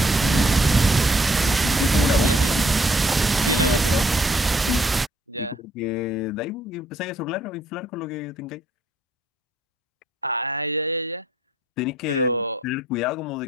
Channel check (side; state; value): both; normal; correlation 0.65